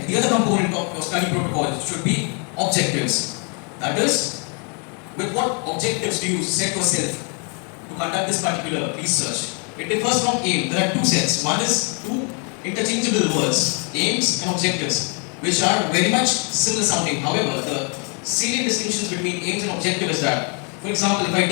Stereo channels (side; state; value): right; quieter; 37.4 dB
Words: the other component of your study protocol should be objectives. That is, with what objectives do you set yourself to conduct this particular research? It differs from aim. There are two sets. One is two interchangeable words, aims and objectives, which are very much similar sounding. However, the salient distinctions between aims and objective is that, for example, if I